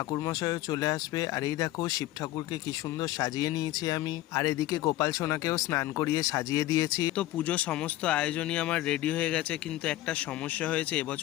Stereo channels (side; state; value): right; quieter; 15.7 dB